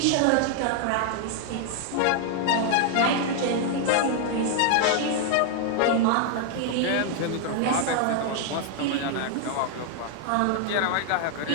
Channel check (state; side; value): different; both; correlation 0.00